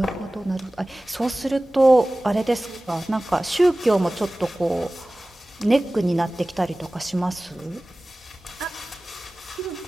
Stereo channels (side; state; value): both; normal; correlation 0.98